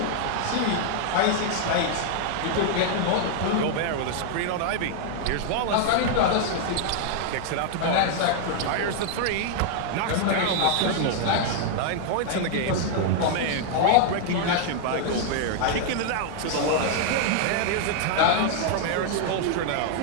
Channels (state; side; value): different; both; correlation 0.00